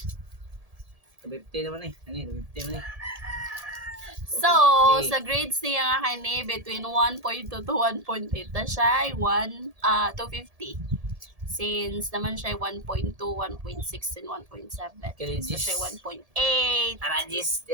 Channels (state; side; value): late; left; 1.7 ms